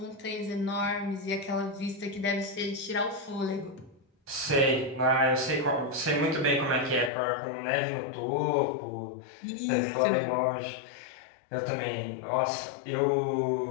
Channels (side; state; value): right; drops out; at 7.1 s